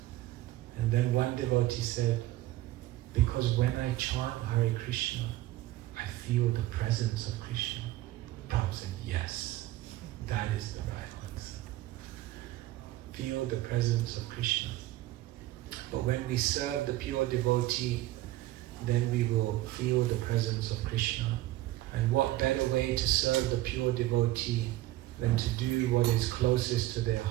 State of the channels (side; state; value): left; quieter; 16.3 dB